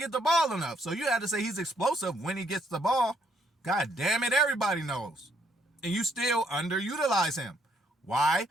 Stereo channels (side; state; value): both; normal; correlation 0.71